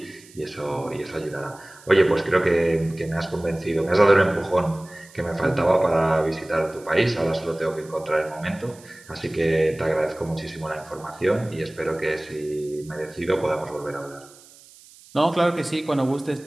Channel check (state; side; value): noise; right; hiss, 23 dB below the sound